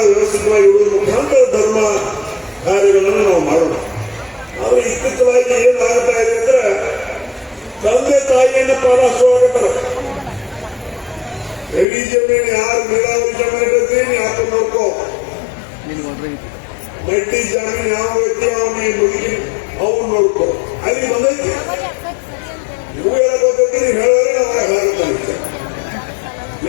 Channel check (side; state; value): right; drops out; at 11.9 s